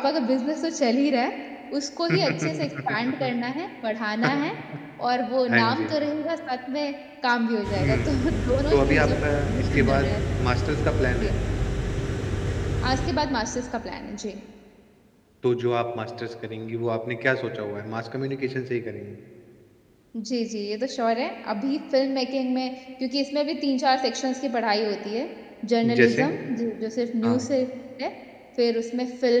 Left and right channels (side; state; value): both; identical; correlation 1.00